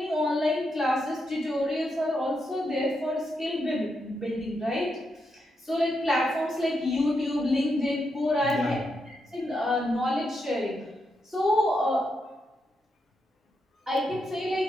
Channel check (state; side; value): normal; both; correlation 0.83